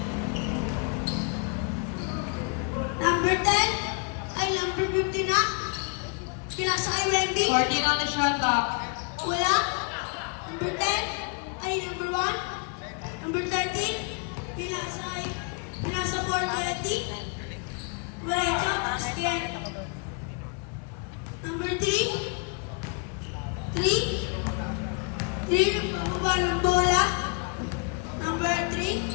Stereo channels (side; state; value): right; quieter; 36.7 dB